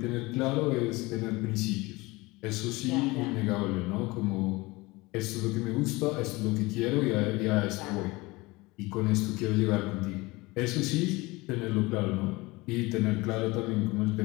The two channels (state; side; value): quieter; right; 22.5 dB